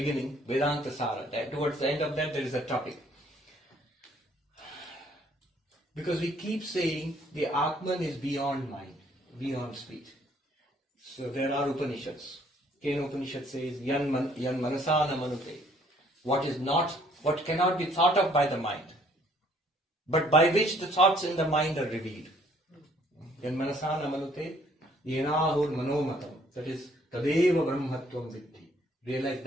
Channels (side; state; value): both; normal; correlation 0.62